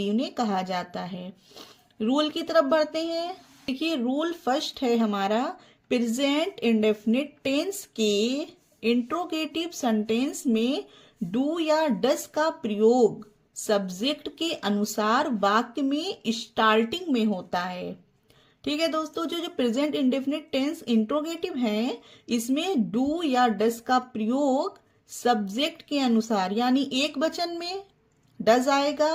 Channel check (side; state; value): both; identical; correlation 1.00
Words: उन्हें कहा जाता है। रूल की तरफ बढ़ते हैं। देखिए, रूल फर्स्ट है हमारा, प्रेजेंट इंडेफिनिट टेंस के इंट्रोगेटिव सेंटेंस में डू या डस का प्रयोग सब्जेक्ट के अनुसार वाक्य में स्टार्टिंग में होता है। ठीक है दोस्तों, जो प्रेजेंट इंडेफिनिट टेंस इंट्रोगेटिव है, इसमें डू या डस का प्रयोग सब्जेक्ट के अनुसार, यानी एक वचन में डज